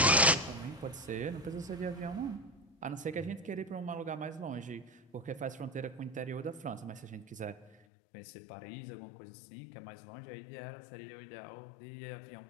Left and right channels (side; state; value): right; drops out; at 7.8 s